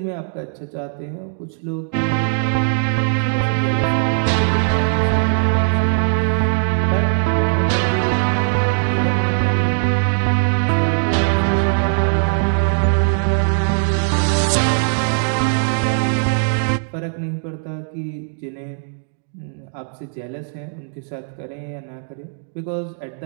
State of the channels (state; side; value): silent; left; digital silence